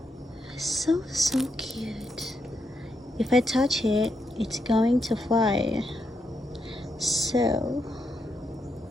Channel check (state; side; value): normal; both; correlation 0.81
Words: So cute. If I touch it, it's going to fly. So